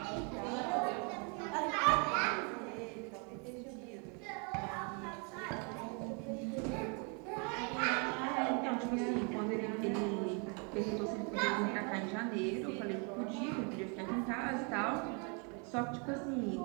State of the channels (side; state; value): left; quieter; 35.6 dB